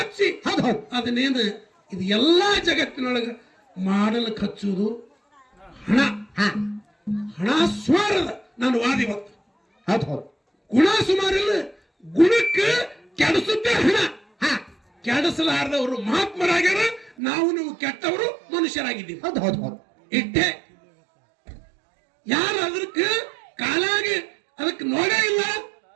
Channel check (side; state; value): left; drops out; at 17.1 s